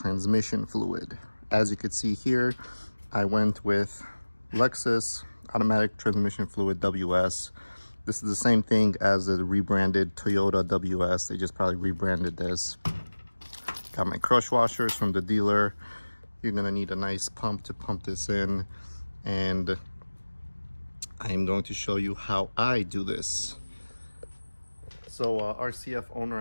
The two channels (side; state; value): both; inverted; correlation -1.00